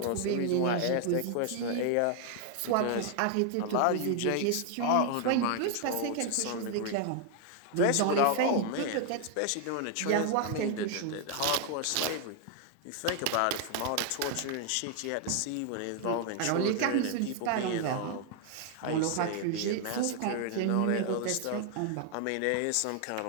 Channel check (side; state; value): both; different; correlation 0.00